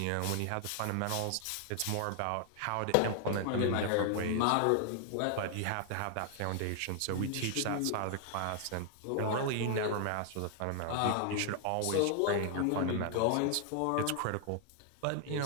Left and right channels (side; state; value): both; different; correlation 0.00